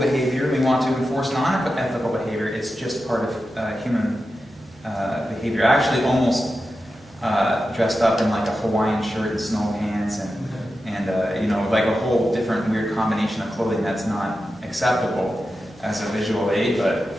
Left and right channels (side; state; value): right; noise; hum, 30 dB below the sound